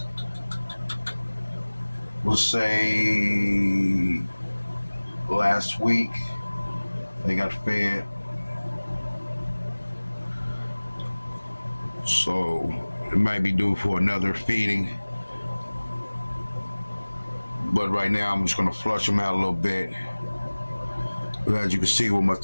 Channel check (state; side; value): inverted; both; correlation -1.00